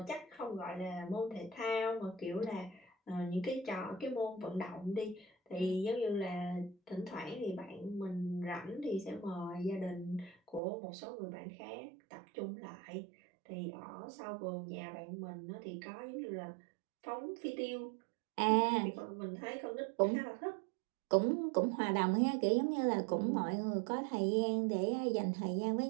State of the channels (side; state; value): left; drops out; at 10.6 s